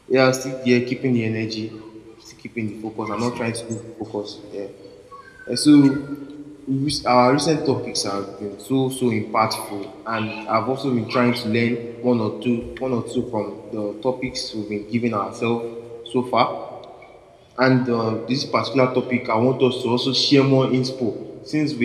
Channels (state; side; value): identical; both; correlation 1.00